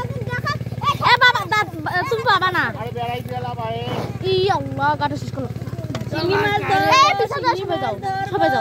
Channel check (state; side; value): identical; both; correlation 1.00